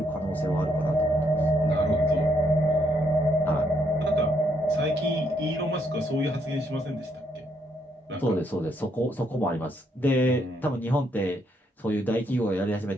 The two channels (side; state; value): both; normal; correlation 0.73